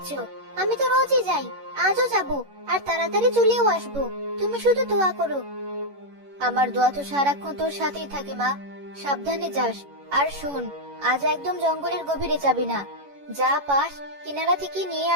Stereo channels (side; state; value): left; late; 11 ms